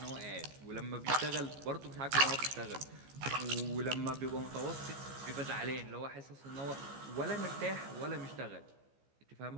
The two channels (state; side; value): late; left; 15 ms